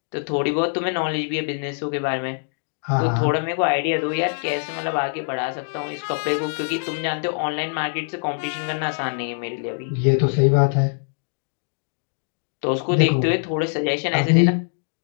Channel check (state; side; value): silent; right; 63 dB below the other